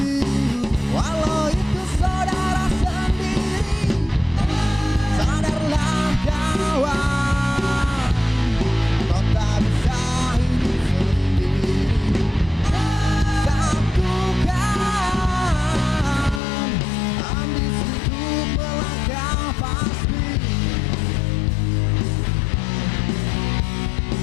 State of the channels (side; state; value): right; drops out; at 16.4 s